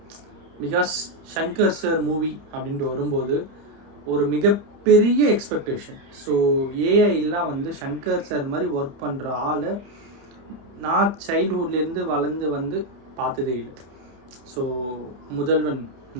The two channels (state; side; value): late; left; 30 ms